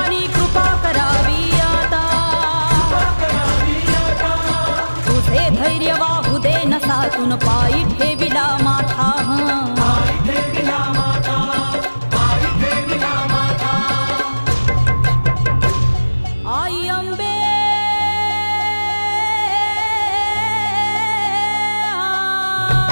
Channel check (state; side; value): inverted; both; correlation -1.00